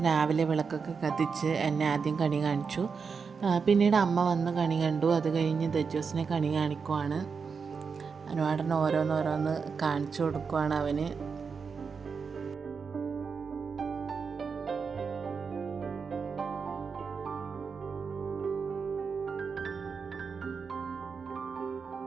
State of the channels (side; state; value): left; quieter; 5.6 dB